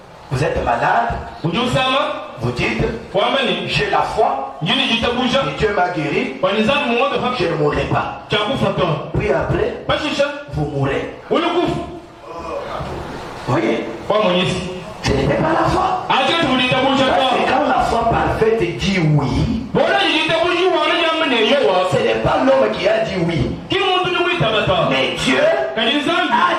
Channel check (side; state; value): both; identical; correlation 1.00